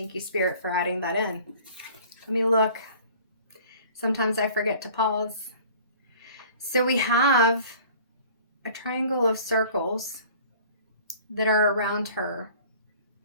you, Spirit, for adding that in. Let me look. Sometimes I forget to pause. So we have a triangle of circles that are around her.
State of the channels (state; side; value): inverted; both; correlation -0.49